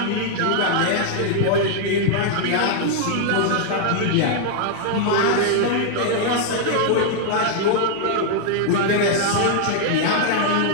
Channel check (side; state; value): both; different; correlation 0.00